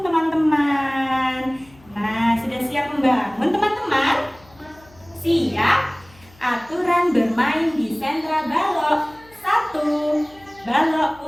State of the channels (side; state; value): left; noise; hum, 27 dB below the sound